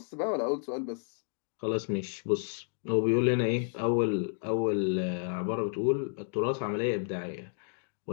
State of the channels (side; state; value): right; silent; digital silence